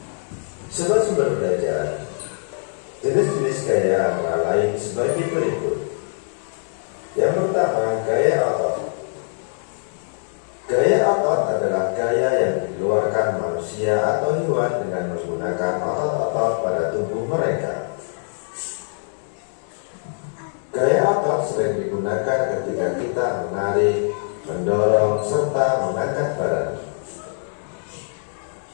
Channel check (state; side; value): silent; right; 64 dB below the other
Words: Sobat sumber belajar, jenis-jenis gaya antara lain sebagai berikut. Yang pertama, gaya otot. Gaya otot adalah gaya yang dikeluarkan manusia atau hewan dengan menggunakan otot-otot pada tubuh mereka. Gaya otot sering digunakan ketika kita menarik, mendorong, serta mengangkat barang.